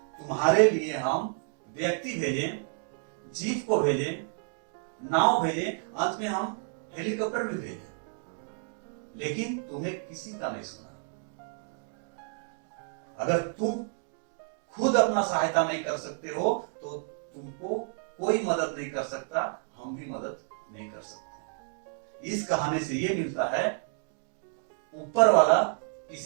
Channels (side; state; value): left; silent; 58 dB below the other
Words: तुम्हारे लिए हम व्यक्ति भेजें, जीप को भेजें, नाव भेजें, अंत में हम हेलीकॉप्टर भी भेजें, लेकिन तुम्हें किसी का नहीं सुना। अगर तुम खुद अपना सहायता नहीं कर सकते हो तो तुमको कोई मदद नहीं कर सकता, हम भी मदद नहीं कर सकते। इस कहानी से ये मिलता है, ऊपर वाला